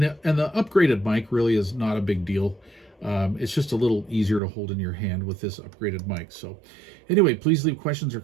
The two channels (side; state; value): left; drops out; at 4.4 s